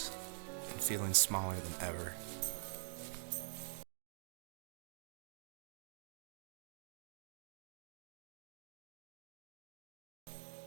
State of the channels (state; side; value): silent; left; digital silence